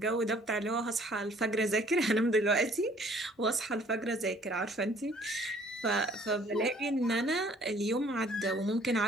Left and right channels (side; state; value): both; normal; correlation 0.58